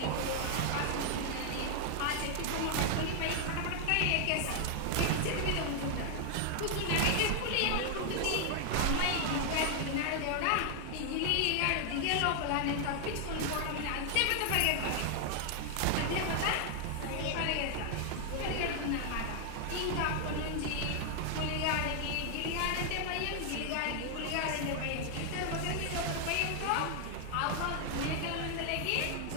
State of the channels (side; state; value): both; different; correlation 0.00